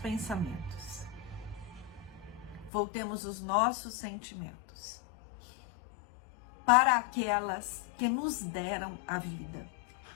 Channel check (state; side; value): drops out; right; at 2.7 s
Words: Voltemos os nossos sentimentos para aquelas que nos deram a vida.